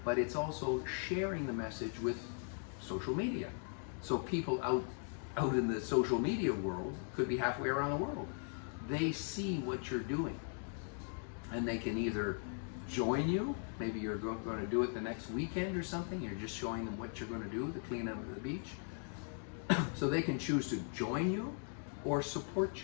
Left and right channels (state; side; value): silent; right; 52 dB below the other